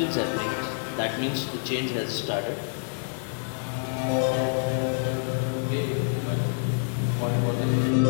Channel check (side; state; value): right; silent; digital silence